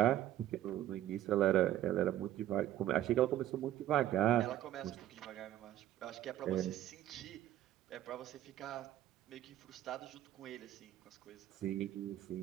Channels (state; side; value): quieter; left; 12.8 dB